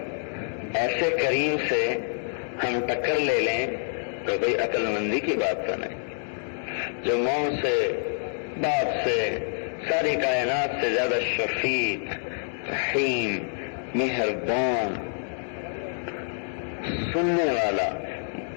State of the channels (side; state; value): right; silent; 60 dB below the other